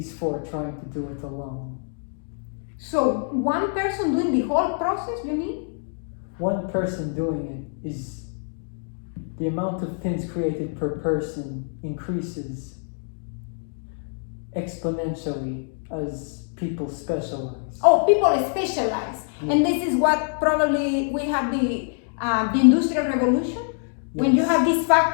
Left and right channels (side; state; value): right; silent; 60 dB below the other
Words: four trying to do it alone. So one person doing the whole process, you mean? One person doing it is the amount of pins created per person increases exponentially as people specialize. Oh, people specialize. Yeah. And this is what probably we have the Industrial Revolution. Yes. When you have these